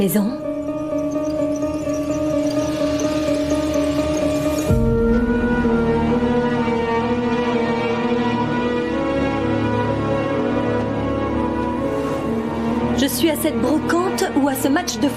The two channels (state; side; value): identical; both; correlation 1.00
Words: Je suis à cette brocante ou à ce match de